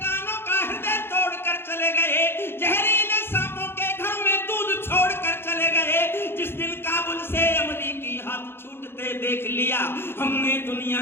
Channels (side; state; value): right; late; 0.11 ms